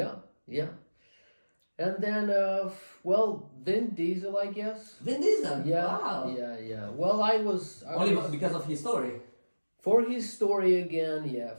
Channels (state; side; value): inverted; both; correlation -1.00